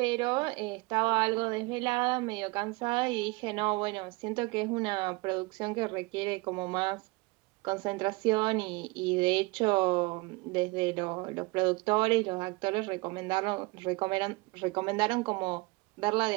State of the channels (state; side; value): quieter; left; 25.1 dB